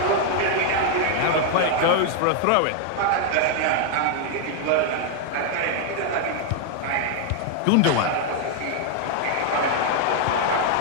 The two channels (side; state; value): both; different; correlation 0.00